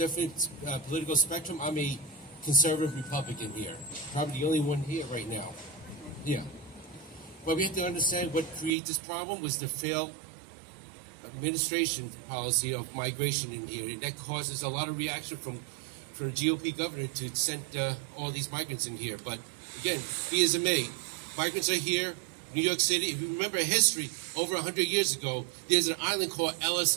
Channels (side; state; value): left; drops out; at 8.7 s